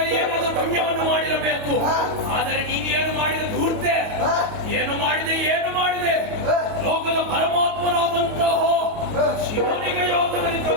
ಏನಾದರೂ ಪುಣ್ಯವನ್ನು ಮಾಡಿರಬೇಕು. ಆದರೆ ನೀನು ಏನು ಮಾಡಿದ ಧೂರ್ತೆ, ಏನು ಮಾಡಿದೆ ಲೋಕದ ಪರಮಾತ್ಮನಾದಂತಹ ಶಿವನಿಗೆ ಯೋಗದಲ್ಲಿ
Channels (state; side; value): late; left; 28 ms